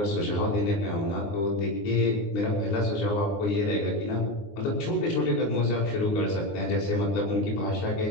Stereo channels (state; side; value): late; right; 19 ms